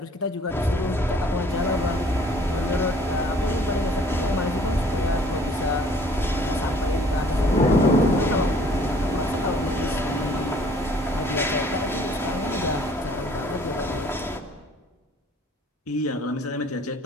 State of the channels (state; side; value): normal; both; correlation 0.57